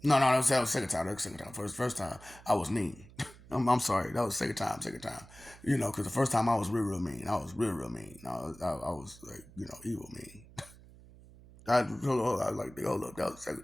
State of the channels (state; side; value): noise; right; hum, 21 dB below the sound